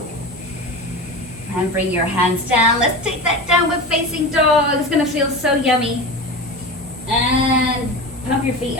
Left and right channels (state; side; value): normal; both; correlation 0.27